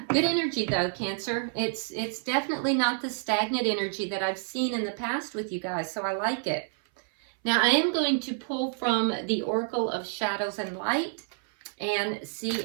good energy though, Cancer. It's definitely not the stagnant energy that I've seen in the past with you guys, so I like it. Now, I am going to pull from the Oracle of Shadows and Light and see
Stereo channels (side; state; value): left; silent; 59 dB below the other